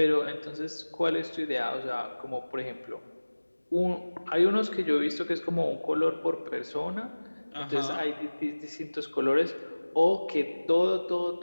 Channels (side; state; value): both; inverted; correlation -1.00